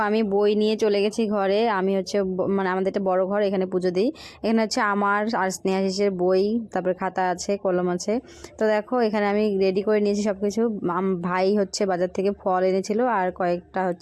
আমি বই নিয়ে চলে গেছি ঘরে, আমি হচ্ছে মানে আমাদের একটা বড় ঘর, এখানে পুজো দিই। এখানে হচ্ছে আমার আর স্নেহাশিসের বই, তারপরে খাতা আছে, কলম আছে। তো দেখো এখানে আমি রেডি করে নিয়েছি সব কিছু। ভাই হচ্ছে বাজার থেকে ফল এনেছিল, আর কয়েকটা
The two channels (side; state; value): both; identical; correlation 1.00